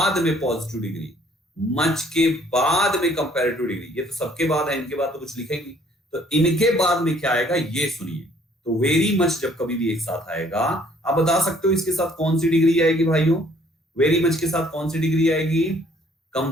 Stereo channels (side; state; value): both; normal; correlation 0.60